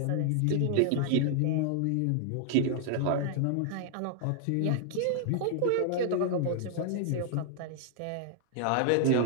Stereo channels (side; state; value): both; different; correlation 0.00